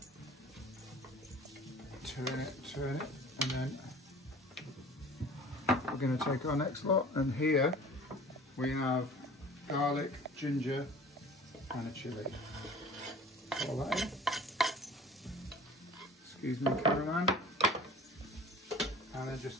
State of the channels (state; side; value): normal; both; correlation 0.44